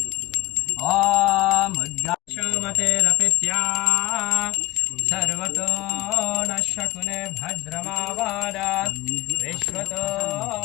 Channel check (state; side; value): quieter; right; 18.6 dB